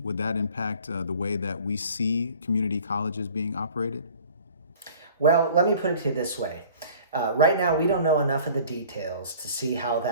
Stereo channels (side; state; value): both; inverted; correlation -0.48